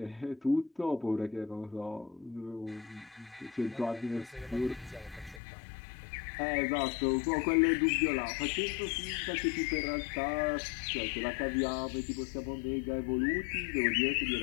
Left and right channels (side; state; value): right; drops out; at 5.4 s